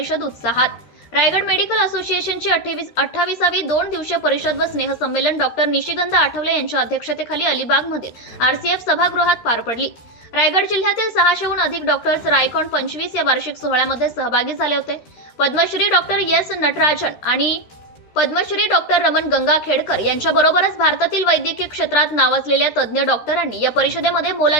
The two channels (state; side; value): late; right; 13 ms